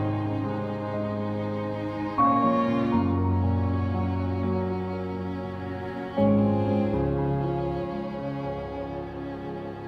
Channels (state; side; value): identical; both; correlation 1.00